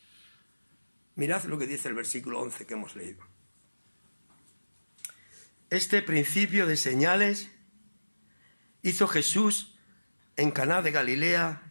Mirad lo que dice el versículo 11 que hemos leído. Este principio de señales hizo Jesús en Caná de Galilea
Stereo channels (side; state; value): both; inverted; correlation -1.00